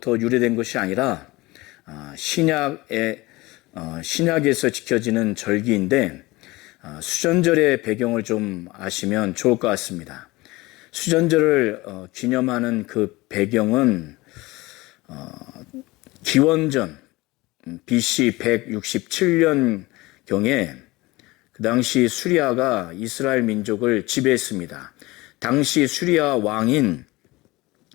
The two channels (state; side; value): quieter; right; 21.0 dB